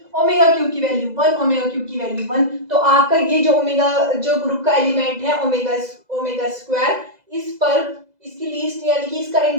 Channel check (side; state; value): left; late; 2.0 ms